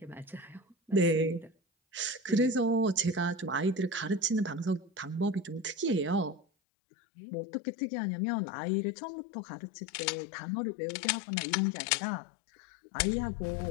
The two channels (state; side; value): drops out; right; at 6.5 s